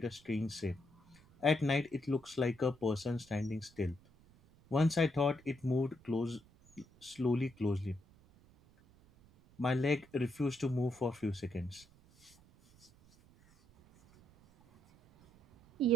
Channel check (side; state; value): right; noise; rumble, 27 dB below the sound